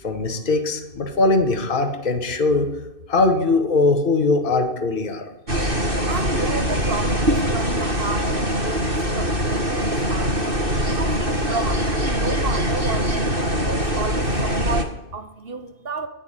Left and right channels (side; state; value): left; late; 2.6 ms